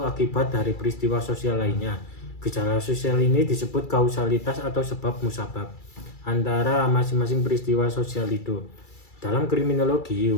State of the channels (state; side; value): late; right; 2.3 ms